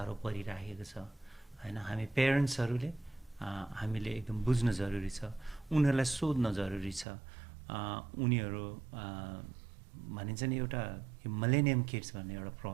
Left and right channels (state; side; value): drops out; left; at 7.1 s